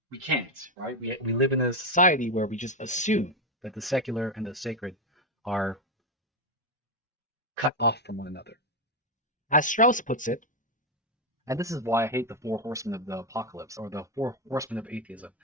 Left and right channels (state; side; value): normal; both; correlation 0.08